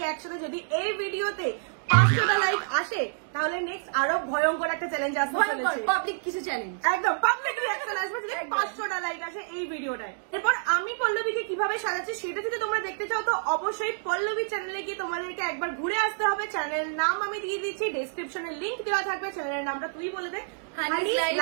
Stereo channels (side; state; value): left; silent; digital silence